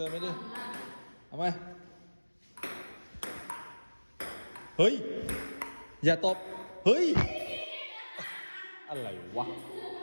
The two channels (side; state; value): both; inverted; correlation -1.00